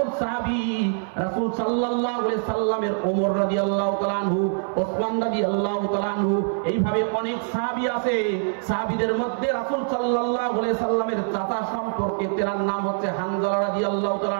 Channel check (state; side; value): silent; left; 62 dB below the other